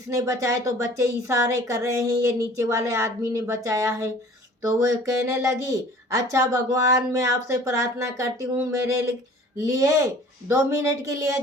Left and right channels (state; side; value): normal; both; correlation 0.48